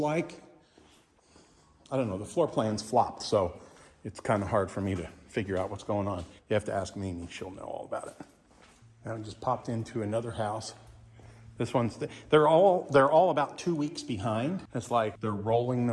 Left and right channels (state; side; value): identical; both; correlation 1.00